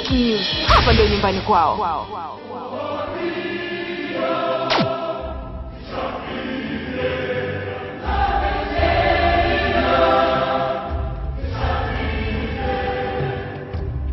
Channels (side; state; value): both; identical; correlation 1.00